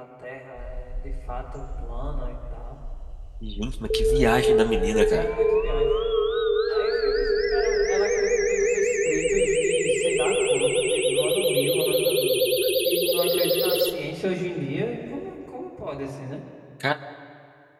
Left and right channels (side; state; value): both; identical; correlation 1.00